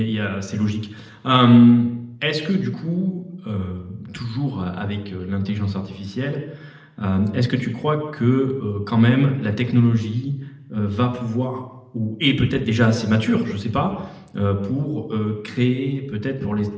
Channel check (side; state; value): both; identical; correlation 1.00